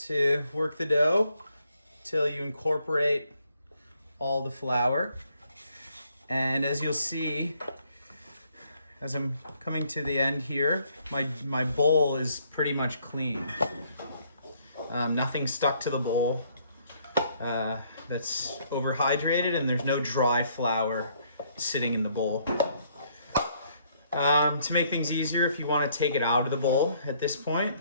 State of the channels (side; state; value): both; inverted; correlation -0.67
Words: work the dough till you incorporate all the flour. And as you'll see, as I'm coming to the end here, my bowl is pretty much clean. Nothing stuck to the bowl that's overhydrated, and there's no dry flour sitting in the bowl. To make things easier, if you want to take it out of the bowl at this point